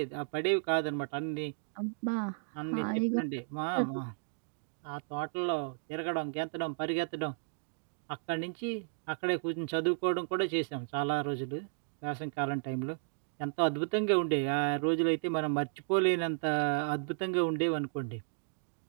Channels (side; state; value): left; silent; digital silence